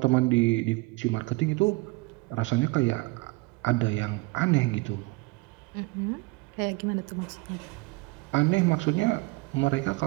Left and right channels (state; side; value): quieter; left; 24.9 dB